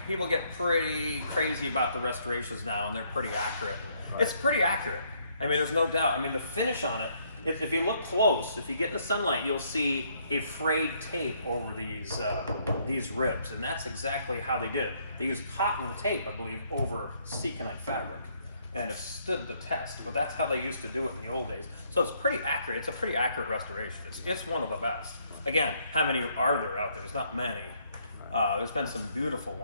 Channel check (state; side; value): inverted; both; correlation -0.69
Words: People get pretty crazy about the restorations now, and they're pretty accurate. It's pretty accurate. I mean, there's no doubt. I mean, the finish on it, if you look close, if you get in the sunlight, you'll see a frayed tape over these ribs, and that's exactly how they did it. They used cotton tape, I believe, over Seconite fabric, and it stood the test. But that's how they used to do it in the old days. So it's pretty accurate. It's a pretty accurate restoration. It's one of the best. Again, how many are there out there? There's not many. There's been some beautiful